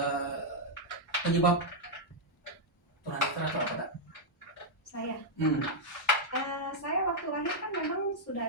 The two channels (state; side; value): normal; both; correlation -0.03